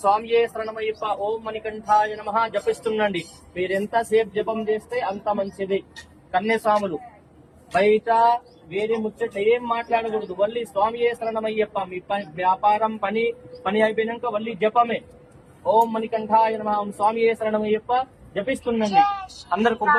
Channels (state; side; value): identical; both; correlation 1.00